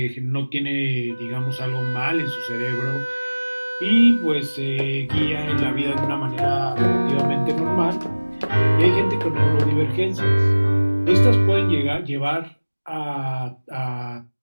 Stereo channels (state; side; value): inverted; both; correlation -1.00